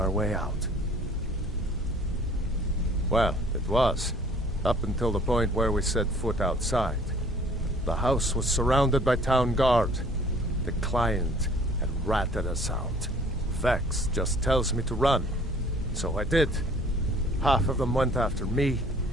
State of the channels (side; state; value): both; normal; correlation 0.54